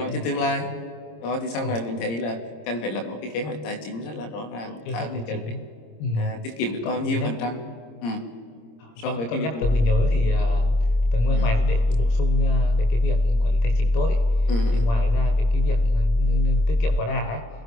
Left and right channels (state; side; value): late; right; 26 ms